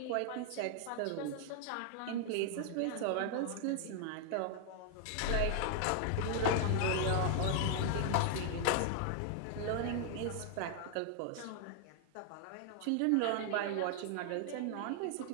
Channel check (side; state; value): both; different; correlation 0.00